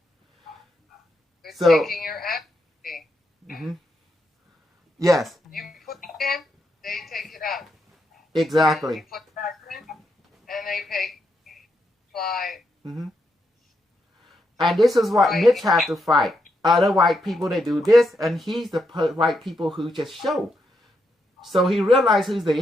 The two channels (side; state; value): both; normal; correlation 0.81